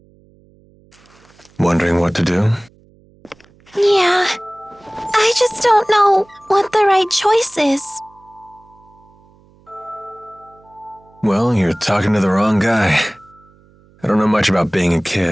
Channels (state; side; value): noise; right; hum, 30 dB below the sound